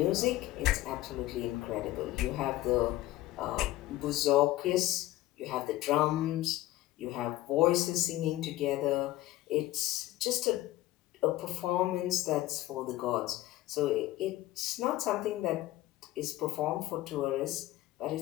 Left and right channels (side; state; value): right; quieter; 16.1 dB